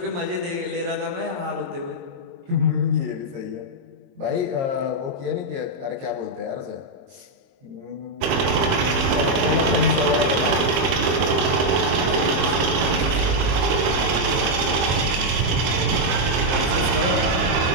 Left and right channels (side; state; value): left; late; 23 ms